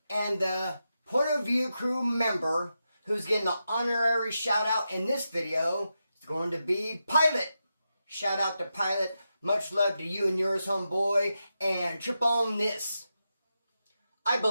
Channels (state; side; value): inverted; both; correlation -0.88